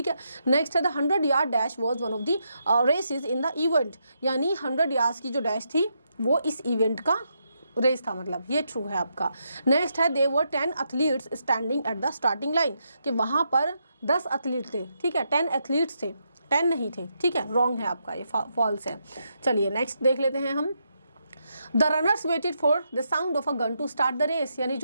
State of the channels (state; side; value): inverted; both; correlation -0.81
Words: है। नेक्स्ट है, the 100 yard dash was one of the races in the event, यानी 100 यार्ड्स की जो डैश थी वो इस इवेंट का रेस था, मतलब ये ट्रू है आपका। नेक्स्ट है, दे वर 10 athletes standing at the starting line, कि वहाँ पर 10 एथलीट थे। ठीक है, 10 एथलीट्स थे, 10 नहीं थे। ठीक है, रॉन्ग है आपका, ये फॉल्स है। चलिए नेक्स्ट देख लेते हैं हम। The runners waited for the sound of a gun to start the race, यानी